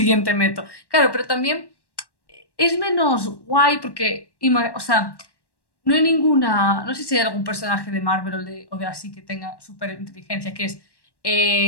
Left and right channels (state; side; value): late; right; 1.1 ms